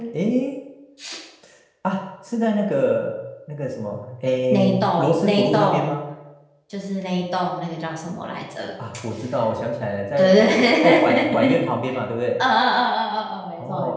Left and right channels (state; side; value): identical; both; correlation 1.00